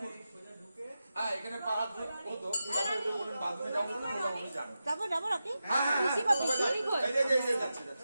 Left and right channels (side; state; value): both; inverted; correlation -0.91